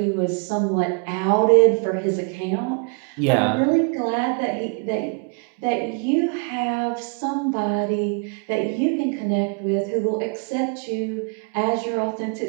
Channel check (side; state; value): left; quieter; 36.6 dB